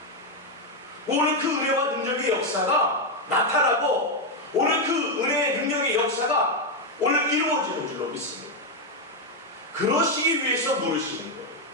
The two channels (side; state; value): both; normal; correlation 0.04